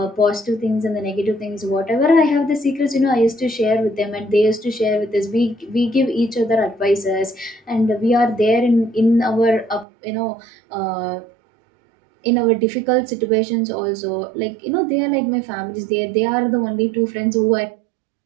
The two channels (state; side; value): drops out; left; at 9.9 s